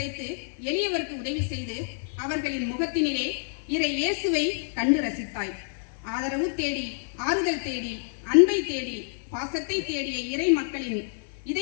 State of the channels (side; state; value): right; silent; digital silence